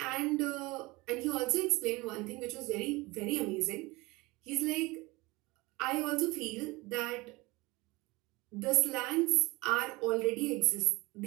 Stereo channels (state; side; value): quieter; left; 22.7 dB